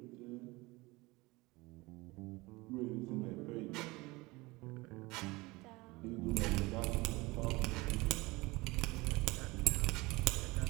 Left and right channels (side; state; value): left; quieter; 22.6 dB